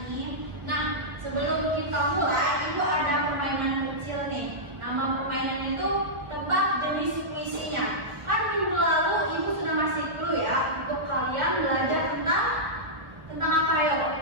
ini. Nah, sebelum kita mulai, Ibu ada permainan kecil nih. Nama permainannya itu tebak jenis puisinya. Kan minggu lalu Ibu sudah ngasih clue ya untuk kalian belajar tentang apa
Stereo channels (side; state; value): left; late; 1.6 ms